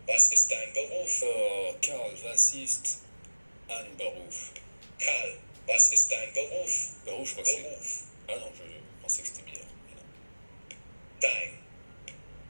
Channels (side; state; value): both; inverted; correlation -1.00